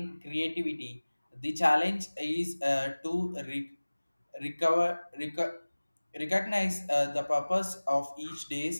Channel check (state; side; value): inverted; both; correlation -1.00